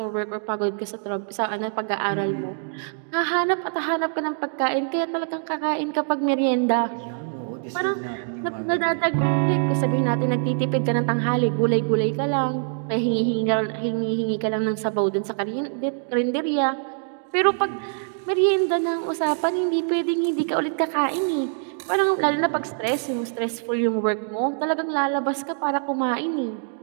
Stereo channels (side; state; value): left; silent; digital silence